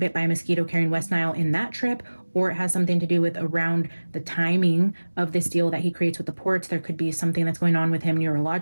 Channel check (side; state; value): both; inverted; correlation -1.00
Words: by a mosquito carrying West Nile in that trip, or it has something to do with around the timing of this deal that he creates with the ports, there could be something that's going on with him